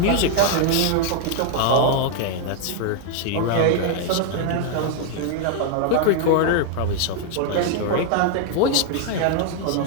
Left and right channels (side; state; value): both; different; correlation 0.00